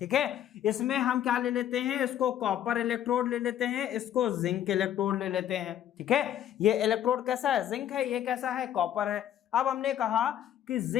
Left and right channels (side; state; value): right; quieter; 11.0 dB